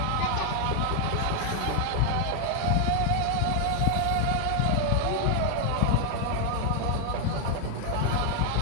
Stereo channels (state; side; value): different; both; correlation 0.00